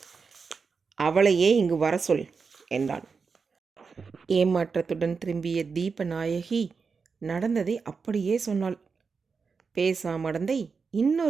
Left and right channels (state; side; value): quieter; left; 5.1 dB